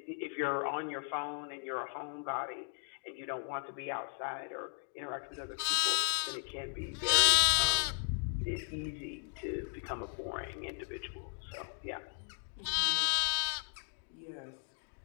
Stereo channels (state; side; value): silent; right; 54 dB below the other